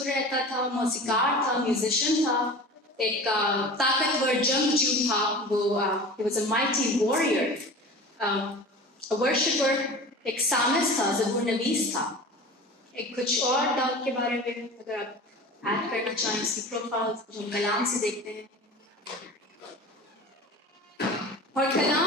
رہتا تھا، موسیقار تھا، میوزیشین تھا، ایک طاقتور جنگجو تھا. وہ he was a mighty warrior, a worshipper, ایک سامس تھا، زبور نویس تھا. ایک کچھ اور داؤد کے بارے میں اگر آپ ایڈ کرنا چاہیں اس کی پروفائل جو ہم کلام سے دیکھتے ہیں. اور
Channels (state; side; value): normal; both; correlation 0.36